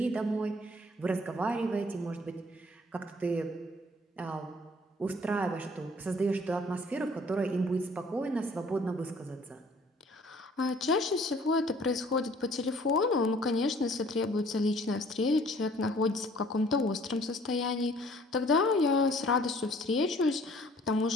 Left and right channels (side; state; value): both; normal; correlation 0.56